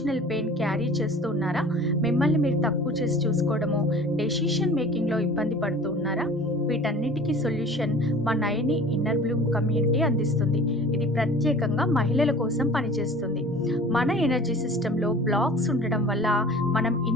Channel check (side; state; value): both; normal; correlation 0.43